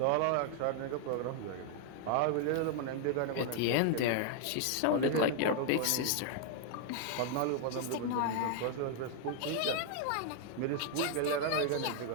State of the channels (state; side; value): different; both; correlation 0.00